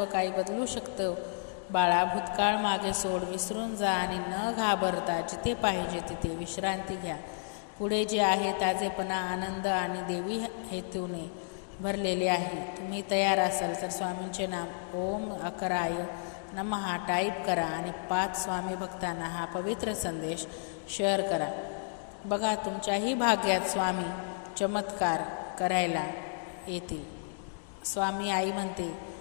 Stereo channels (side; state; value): right; silent; digital silence